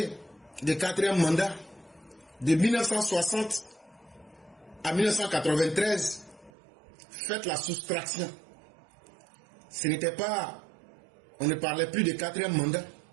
de 4e mandat. De 1960 à 1993, faites la soustraction. Ce n'était pas... On ne parlait plus de 4e mandat.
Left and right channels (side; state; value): left; drops out; at 6.5 s